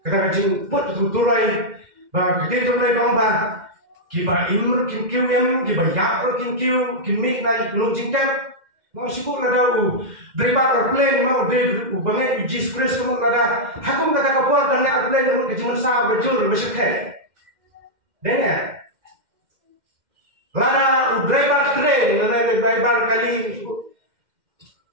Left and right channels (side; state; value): left; late; 2.1 ms